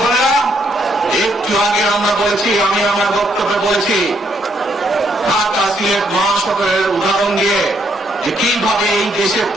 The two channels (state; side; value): normal; both; correlation 0.73